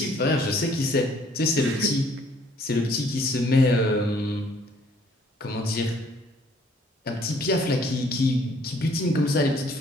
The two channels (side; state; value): both; normal; correlation 0.61